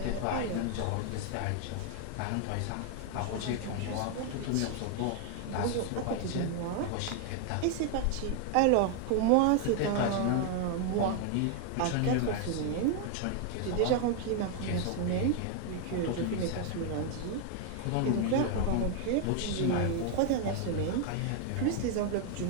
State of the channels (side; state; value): both; different; correlation 0.00